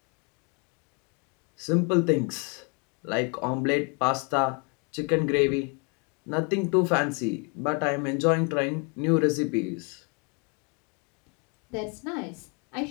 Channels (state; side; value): quieter; right; 35.4 dB